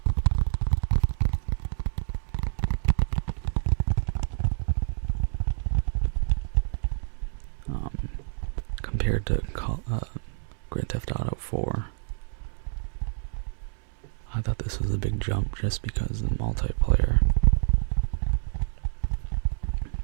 Compared to Grand Theft Auto 4, I thought this was a big jump just because of the multiplayer.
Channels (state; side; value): silent; left; 60 dB below the other